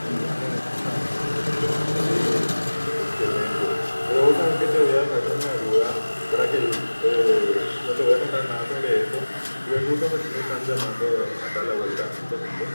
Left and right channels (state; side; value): inverted; both; correlation -1.00